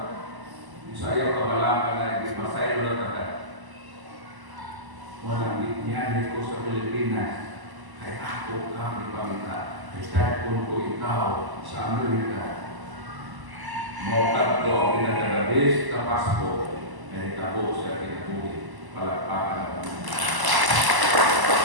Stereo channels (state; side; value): late; left; 1.0 ms